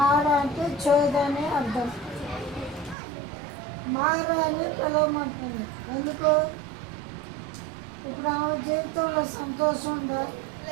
అంటే చేదు అనే అర్థం. మార అని పిలవమంటుంది. ఎందుకు? ఇప్పుడు ఆమె జీవితంలో సంతోషం ఉందా?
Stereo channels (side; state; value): left; drops out; at 3.0 s